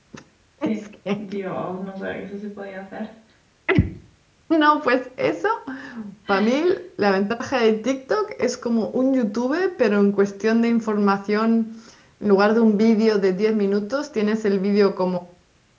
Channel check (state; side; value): identical; both; correlation 1.00